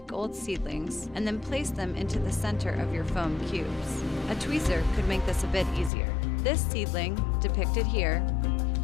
seedlings and then place them into the center of your foam cubes. A tweezer could make this a bit easier. This seedling, depicted here,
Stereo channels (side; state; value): right; drops out; at 5.9 s